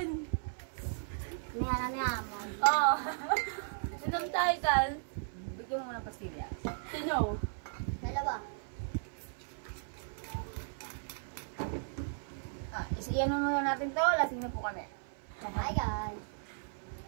niya mo. Oo. Sinong tayo, Kal? Bigyan mo muna ng pastilya. Sino? Dalawa. Iyan mo muna natin to. Lasing na po kami. Hi guys.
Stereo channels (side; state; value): left; silent; 54 dB below the other